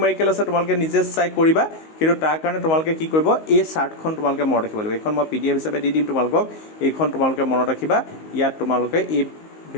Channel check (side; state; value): right; late; 19 ms